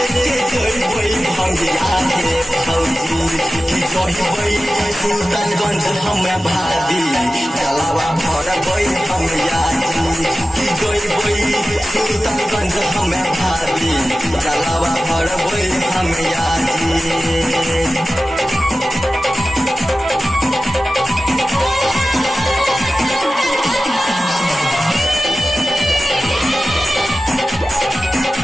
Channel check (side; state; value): both; normal; correlation 0.95